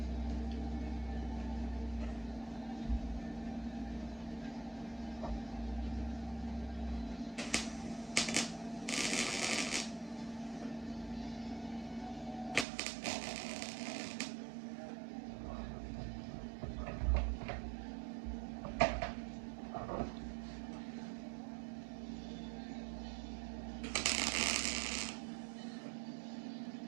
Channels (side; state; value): left; drops out; at 12.7 s